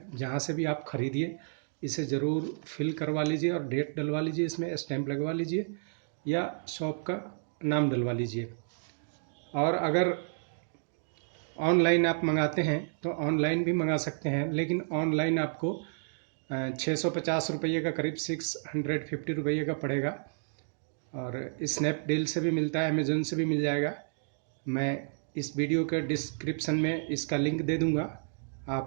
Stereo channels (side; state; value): left; silent; digital silence